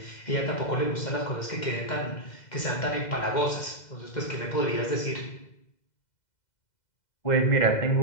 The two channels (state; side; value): late; right; 2.0 ms